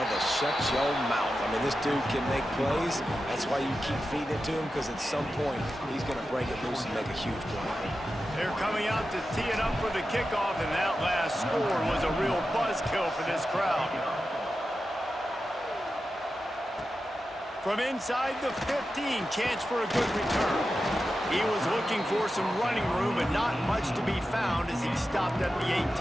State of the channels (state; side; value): normal; both; correlation 0.91